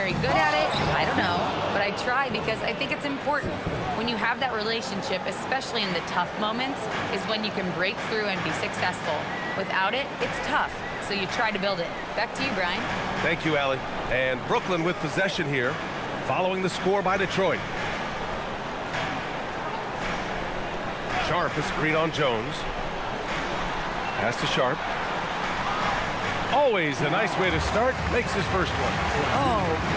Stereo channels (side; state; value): both; identical; correlation 1.00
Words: good at it? I don't know, but I try because I think it's important. When you have that relationship, especially in the tough moments, is when you can break through and be successful. Without it, it's tough, so you try to build it." Back to you, Brian. Thank you, Allie. And Brooklyn with possession here, following the score by Detroit. Sharp, a screen on Jones. Pass to Sharp. always a nice way to start, makes his first one. Oh,